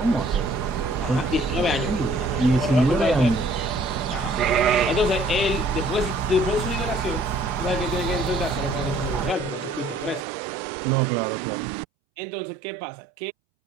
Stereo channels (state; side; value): drops out; left; at 10.2 s